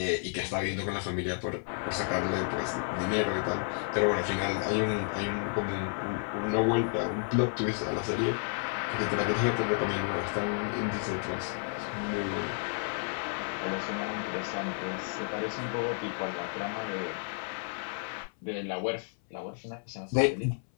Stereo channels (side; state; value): right; silent; 57 dB below the other